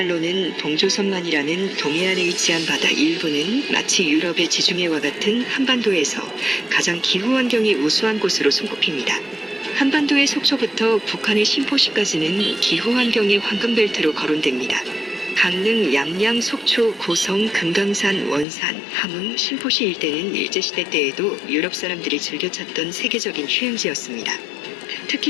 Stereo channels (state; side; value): drops out; right; at 18.4 s